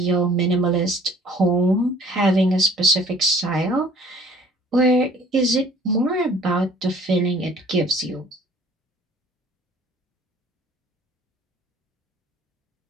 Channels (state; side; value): normal; both; correlation 0.54